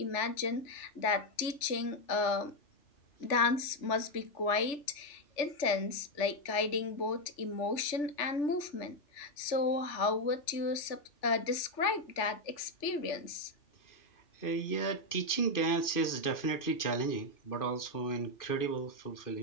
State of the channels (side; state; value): right; late; 3.4 ms